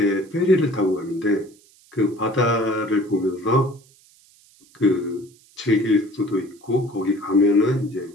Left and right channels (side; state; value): right; noise; hiss, 29 dB below the sound